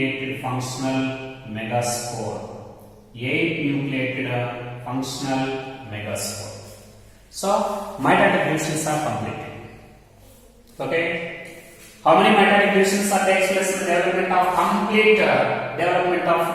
functional megaspore. 8 nucleated functional megaspore. So, mitotic divisions are completed. Okay? How many mitotic divisions are takes place in the development of complete development of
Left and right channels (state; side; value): identical; both; correlation 1.00